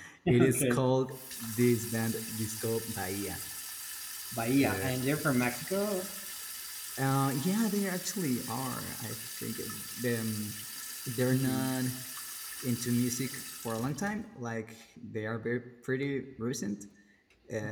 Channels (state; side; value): identical; both; correlation 1.00